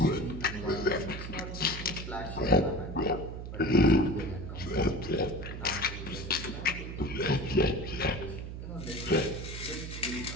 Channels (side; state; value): right; noise; hum, 8 dB below the sound